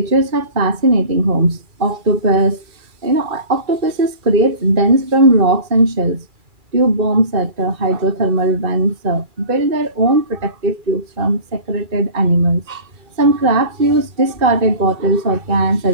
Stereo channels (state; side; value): late; left; 2.4 ms